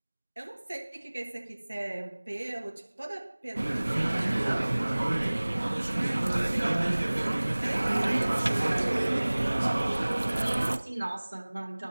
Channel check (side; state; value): both; inverted; correlation -1.00